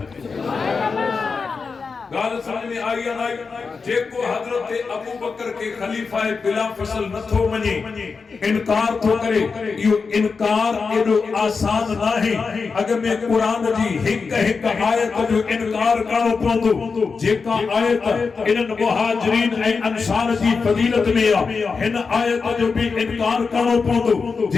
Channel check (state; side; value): quieter; right; 4.9 dB